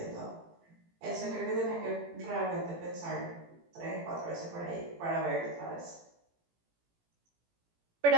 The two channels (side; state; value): left; late; 18 ms